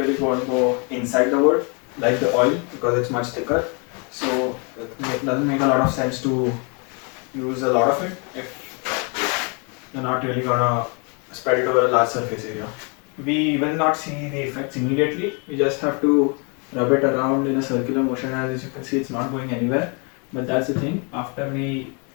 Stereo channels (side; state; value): right; quieter; 34.8 dB